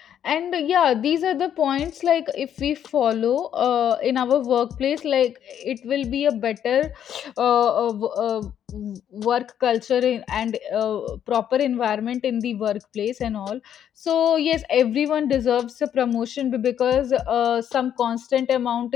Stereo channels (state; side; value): quieter; right; 9.6 dB